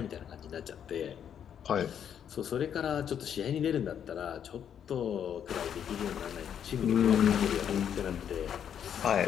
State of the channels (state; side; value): quieter; right; 8.8 dB